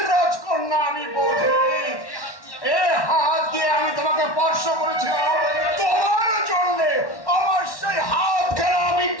রাজকন্যা, আমি বধির। এ হাত দিয়ে আমি তোমাকে স্পর্শ করেছিলাম তোমার জন্য। আমার সেই হাত খেলা আমি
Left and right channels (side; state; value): right; late; 1.1 ms